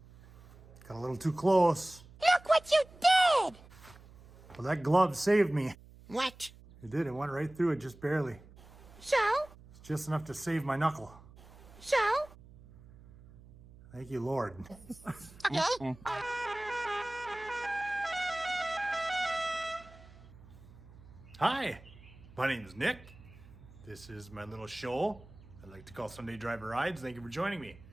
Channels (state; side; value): noise; right; hum, 21 dB below the sound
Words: Got a little too close. Look what you did! Well, that glove saved me. What? It did. It went right through it, just barely. So? It's just enough to save my knuckle. So? Thank you, Lord. Okay. Hi, my name is Nick. This is my little show I like to call Sunday Driver Rides. Thank you for joining me.